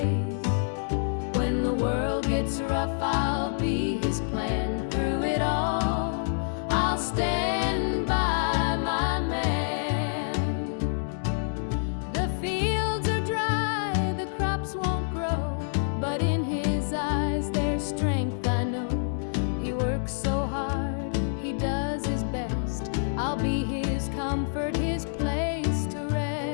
When the world gets rough, I'll be his plan. Through it all, I'll stand by my man. The fields are dry, the crops won't grow, but in his eyes there's strength, I know. He works so hard, he does his best. I'll be his comfort, his place to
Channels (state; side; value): silent; right; digital silence